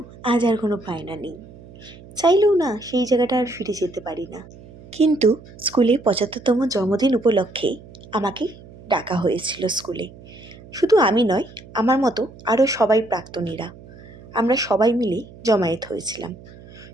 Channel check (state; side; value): noise; right; hum, 20 dB below the sound